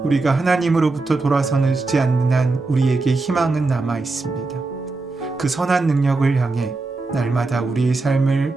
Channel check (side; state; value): left; quieter; 3.5 dB